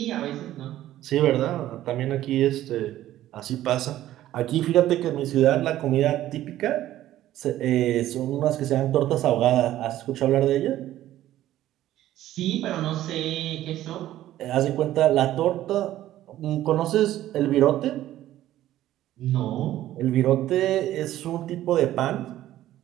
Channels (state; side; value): quieter; left; 13.7 dB